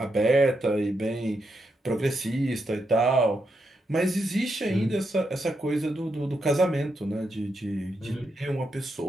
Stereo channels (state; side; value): normal; both; correlation 0.83